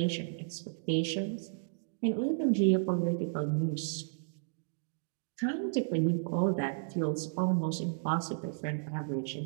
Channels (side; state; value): left; silent; digital silence